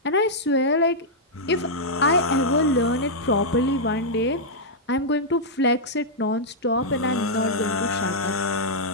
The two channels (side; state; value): both; normal; correlation -0.07